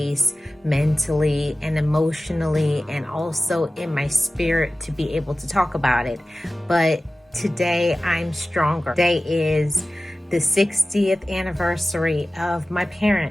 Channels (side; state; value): both; normal; correlation 0.96